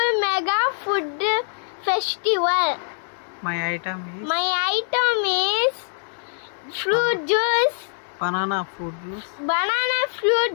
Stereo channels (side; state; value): right; silent; digital silence